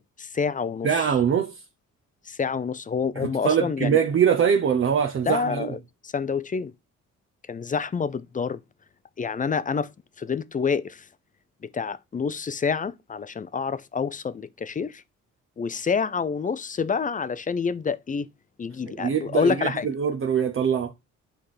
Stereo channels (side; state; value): both; normal; correlation 0.20